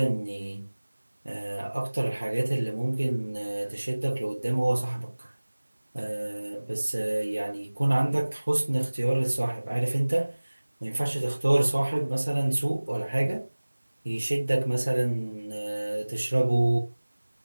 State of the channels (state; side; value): inverted; both; correlation -1.00